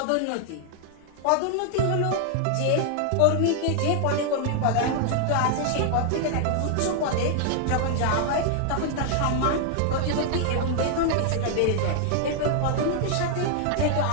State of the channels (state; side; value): different; both; correlation 0.00